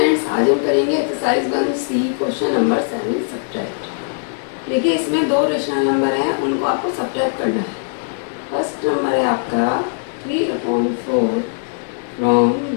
आज हम करेंगे exercise 1C question number 7 subtract. देखिए इसमें दो रेशनल नंबर हैं, उनको आपको सब्ट्रैक्ट करना है। फर्स्ट नंबर है आपका 3/4 फ्रॉम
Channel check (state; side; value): silent; right; digital silence